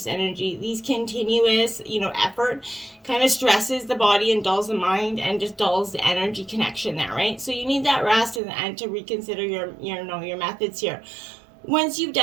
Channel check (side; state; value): left; drops out; at 8.4 s